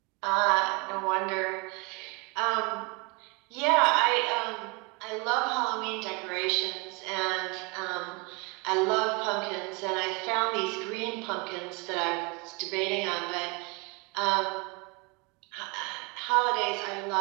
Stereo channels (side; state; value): left; quieter; 29.1 dB